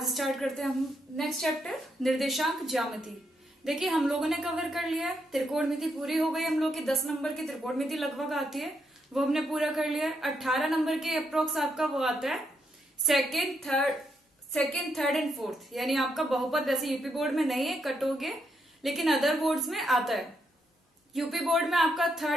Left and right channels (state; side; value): normal; both; correlation 0.79